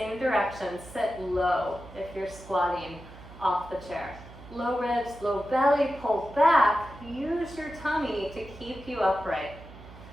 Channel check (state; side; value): noise; right; hum, 17 dB below the sound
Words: direction. Sit low if you're squatting off the chair. Low ribs, low belly, pull back. Use your tummy to keep you upright.